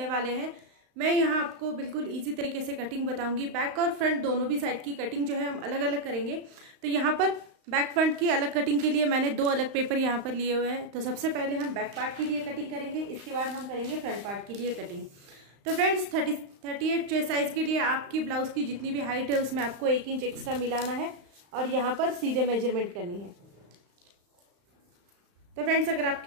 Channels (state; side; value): late; left; 35 ms